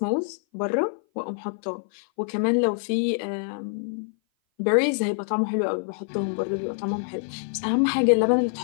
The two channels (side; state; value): right; silent; 57 dB below the other